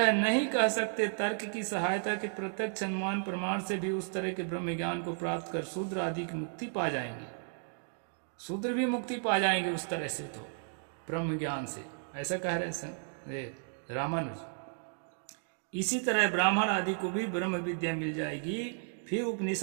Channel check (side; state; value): left; silent; 55 dB below the other